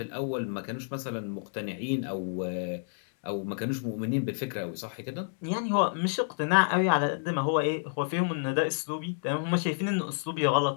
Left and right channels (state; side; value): silent; right; digital silence